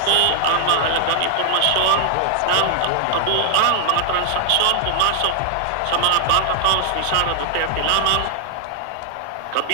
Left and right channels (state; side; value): different; both; correlation -0.01